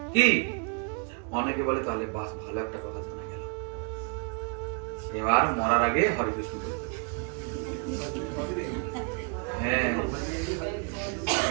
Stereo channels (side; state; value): left; quieter; 37.5 dB